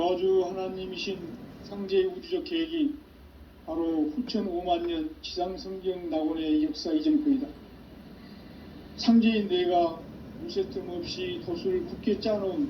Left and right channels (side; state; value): both; identical; correlation 1.00